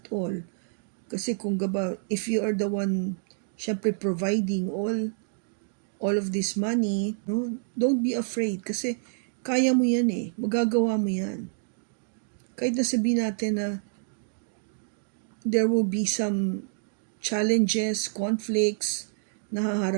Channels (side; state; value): left; silent; digital silence